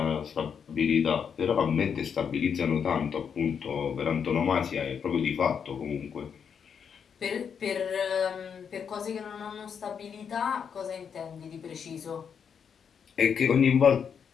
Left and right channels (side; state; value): right; quieter; 7.1 dB